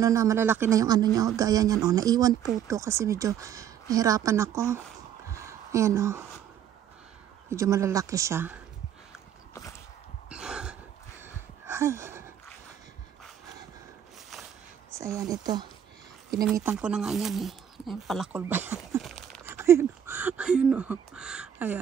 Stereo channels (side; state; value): left; quieter; 9.4 dB